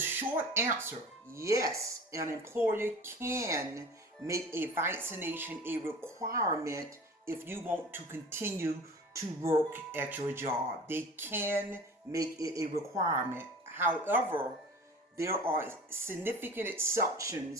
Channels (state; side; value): normal; both; correlation 0.39